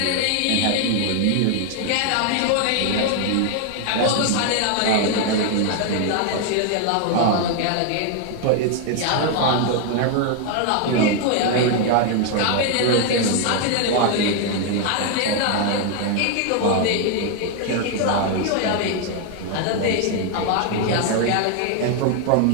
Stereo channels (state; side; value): different; both; correlation 0.00